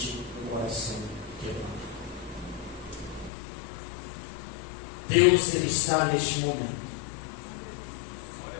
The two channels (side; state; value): right; drops out; at 3.3 s